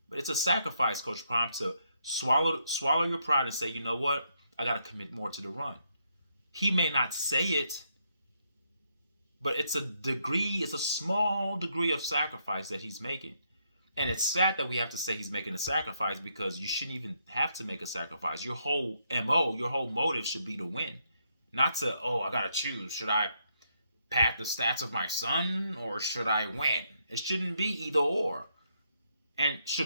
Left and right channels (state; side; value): inverted; both; correlation -0.76